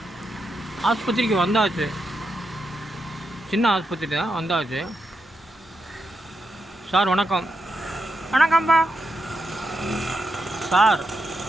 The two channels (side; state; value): both; normal; correlation 0.84